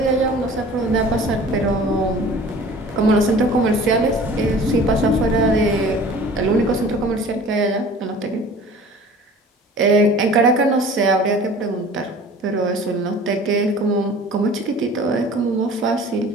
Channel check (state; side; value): normal; both; correlation 0.45